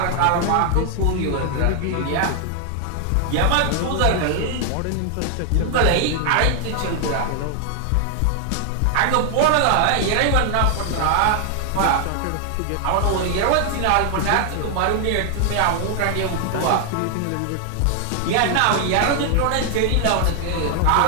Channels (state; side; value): different; both; correlation 0.00